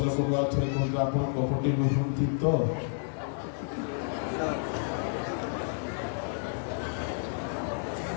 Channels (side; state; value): right; silent; 58 dB below the other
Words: लोक अर्थ कहते आप कपटी नुहंती तो